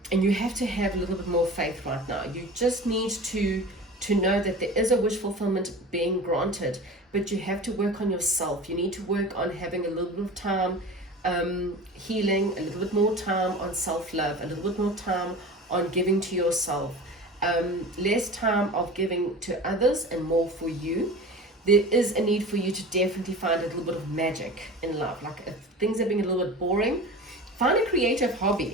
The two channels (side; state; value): both; normal; correlation 0.35